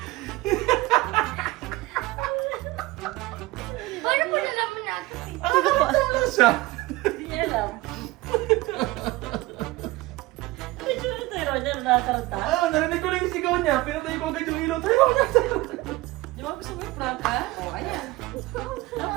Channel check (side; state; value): left; quieter; 19.9 dB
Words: paano po nalaman natin? Nakakatawa lang siya. Hindi niya alam. Medyo na tayo, Roger, nakakaranta. Narinig ko lang yung sigaw niya, pinatay ko agad yung ilaw. Tayo na! Di ba gusto mo i-prank ka? O, ayan.